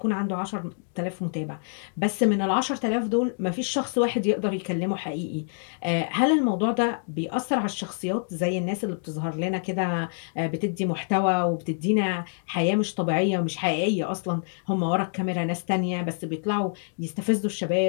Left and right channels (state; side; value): silent; right; digital silence